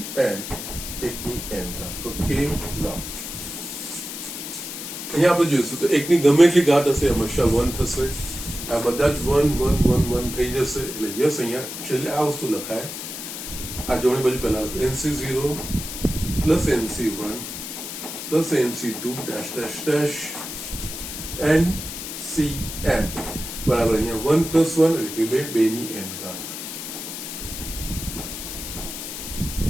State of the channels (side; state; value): left; noise; hiss, 8 dB below the sound